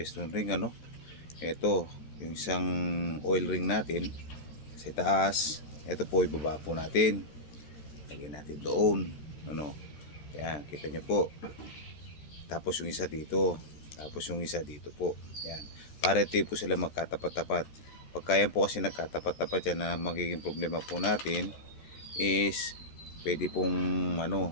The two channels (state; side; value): late; right; 14 ms